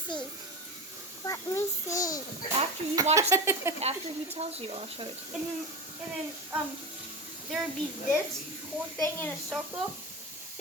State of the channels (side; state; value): both; normal; correlation 0.24